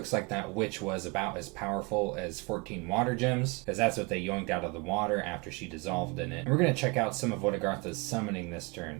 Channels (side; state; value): left; quieter; 28.1 dB